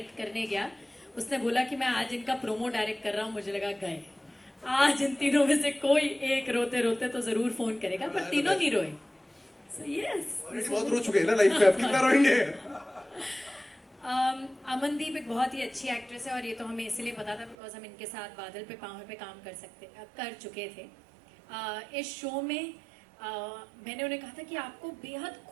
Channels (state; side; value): drops out; left; at 17.6 s